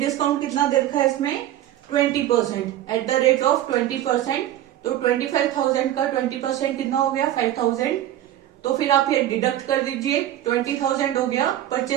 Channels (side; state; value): left; quieter; 12.8 dB